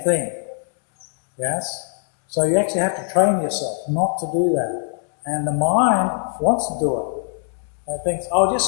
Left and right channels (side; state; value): right; silent; digital silence